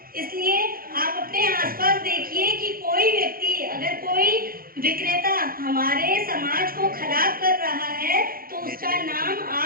इसलिए आप अपने आसपास देखिए कि कोई व्यक्ति, अगर कोई विक्रेता हमारे समाज को खराब कर रहा है तो उसका नाम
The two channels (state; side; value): late; left; 0.42 ms